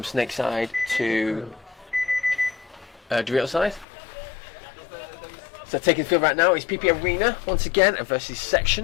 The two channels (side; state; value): right; drops out; at 3.9 s